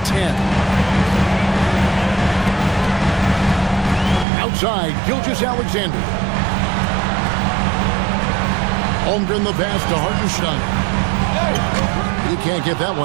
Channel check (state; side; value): drops out; left; at 4.2 s